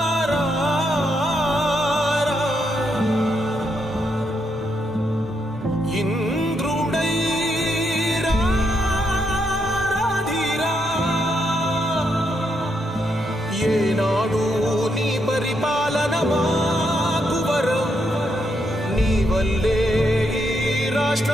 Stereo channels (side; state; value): both; normal; correlation 0.79